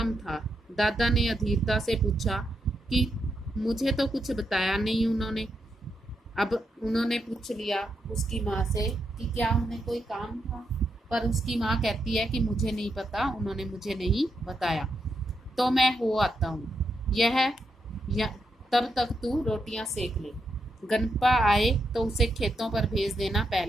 था। दादा ने अधीरता से पूछा कि मुझे तो कुछ बताया नहीं उन्होंने। अब उन्होंने पूछ लिया उसकी माँ से कि क्या उन्हें कोई काम था, पर उसकी माँ कहती है कि मुझे नहीं पता, उन्होंने मुझे नहीं बताया, तो मैं हो आता हूँ। तब तक तू रोटियां सेक ले, गणपा आए तो उसे खेतों पर भेज देना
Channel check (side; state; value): both; normal; correlation 0.82